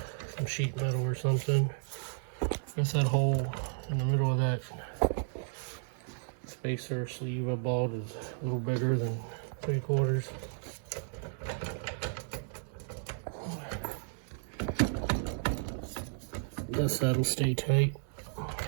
some sheet metal or something. I guess that hole in the middle of that spacer sleeve I bought is a little bigger than 3/4. Guess that'll stay tight.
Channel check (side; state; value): left; silent; digital silence